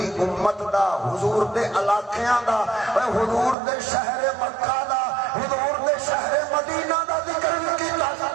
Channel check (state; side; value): drops out; left; at 3.6 s